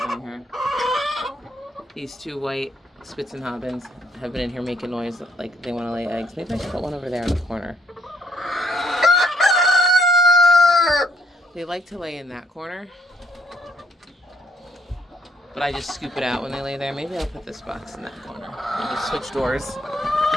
her. These 2 white Spitzenhabens have been in here making noise like they want to lay eggs. Maybe I should put one over there in the corner. They like to lay in that corner, but I just scoop it out when they lay there. Maybe I'll put this box in that corner. I'll just switch doors.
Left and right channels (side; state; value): both; normal; correlation 0.69